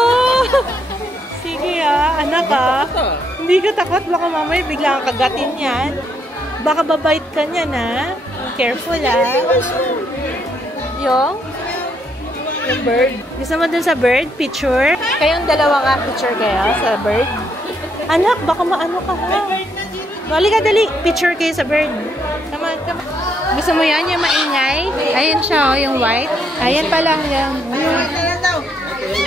Sige anak Hindi ka takot, baka mamaya bigla kang kagatin yan. Baka babait ka niyan Careful Yung bird. Gusto mo dun sa bird? Picture? Kayong dalawa nga picture kayo sa bird? Anak, baka maano ka Dali ka, dali. Picture kayo sa bird. Come on, come on. Gusto mo yan? Yung maingay? Ayan siya, yung white. Ayan pa lang yan.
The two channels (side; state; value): both; normal; correlation 0.74